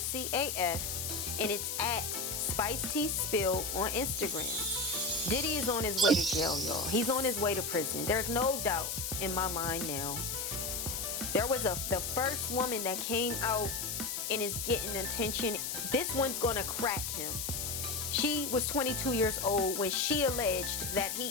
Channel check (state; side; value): noise; left; hiss, 3 dB below the sound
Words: AF, and it's at Spice Tea Spill on Instagram. Diddy is on his way to jail, y'all. He's on his way to prison. There's no doubt in my mind now. There was the first woman that came out and is getting attention. This one's gonna crack him. She was 22 years old when she alleged that